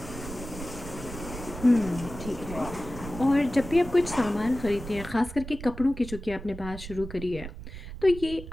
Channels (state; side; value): noise; right; rumble, 11 dB below the sound